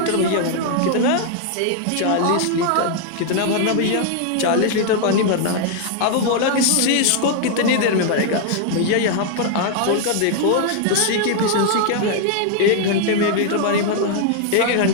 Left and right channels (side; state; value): both; different; correlation 0.00